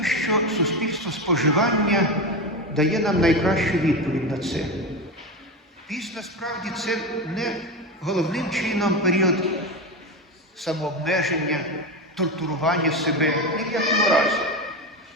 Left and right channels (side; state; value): both; normal; correlation 0.19